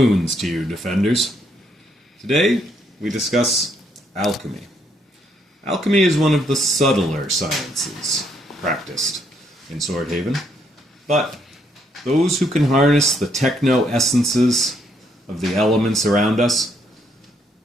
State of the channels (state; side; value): normal; both; correlation 0.72